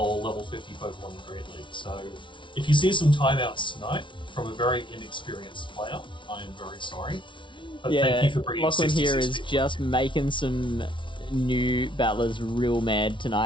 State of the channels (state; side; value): late; right; 0.24 ms